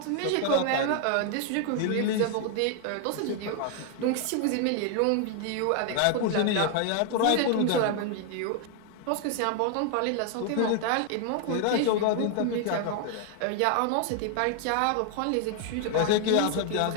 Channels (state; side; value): different; both; correlation 0.00